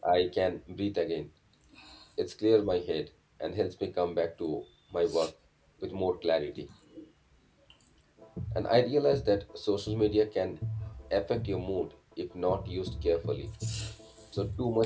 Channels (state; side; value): identical; both; correlation 1.00